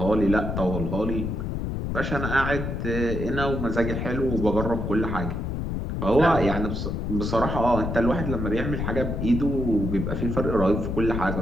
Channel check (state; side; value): noise; left; rumble, 2 dB below the sound